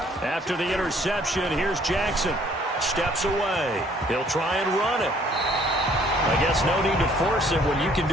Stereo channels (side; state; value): both; normal; correlation 0.60